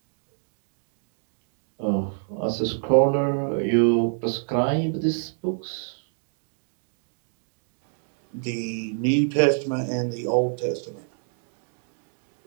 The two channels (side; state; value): left; silent; digital silence